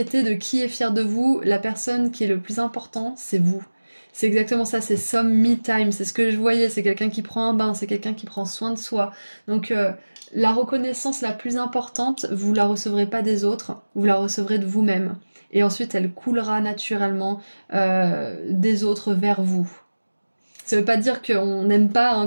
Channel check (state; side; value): inverted; both; correlation -1.00